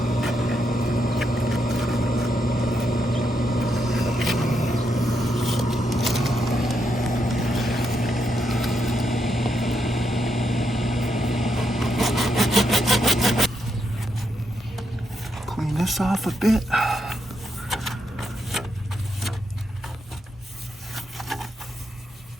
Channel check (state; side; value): normal; both; correlation 0.80